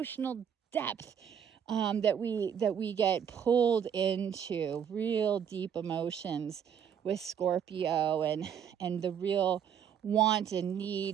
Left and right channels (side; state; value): left; quieter; 8.3 dB